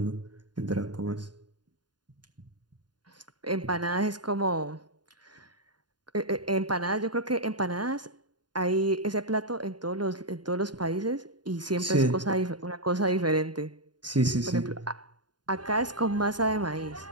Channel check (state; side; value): late; left; 0.70 ms